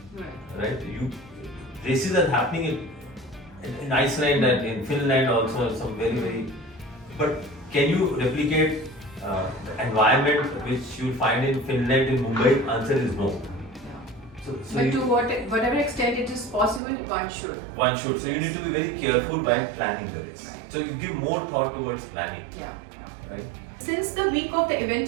Right? Races are happening in Iceland and in Finland also, some very. But can you replicate the environment which you find in Finland, in Mumbai? Answer is no. So But to whatever extent it is possible, one should. One should. So you need to be very careful while planning the race. Right. So you give more thought towards planning. Yeah. Right? Since the week of the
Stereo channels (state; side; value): drops out; left; at 16.8 s